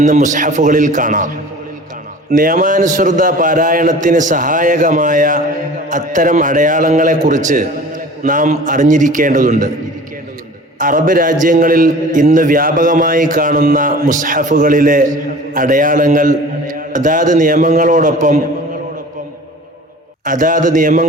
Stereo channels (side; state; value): both; normal; correlation 0.43